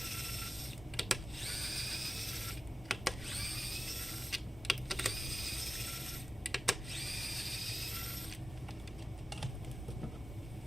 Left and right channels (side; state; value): both; normal; correlation 0.95